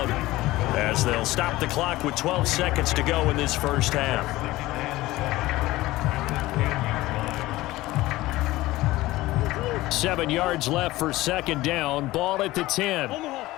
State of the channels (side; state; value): right; quieter; 18.0 dB